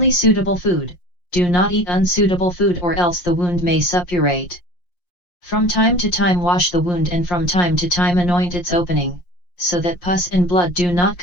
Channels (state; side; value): late; right; 5.6 ms